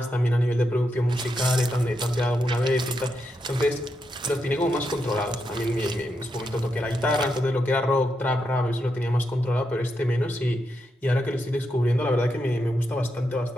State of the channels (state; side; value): normal; both; correlation 0.84